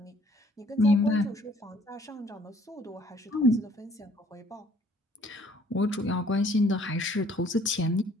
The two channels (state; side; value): normal; both; correlation 0.59